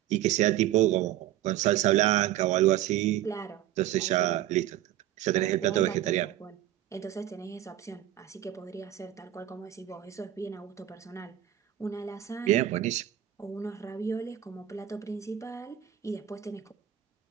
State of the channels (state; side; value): quieter; left; 12.6 dB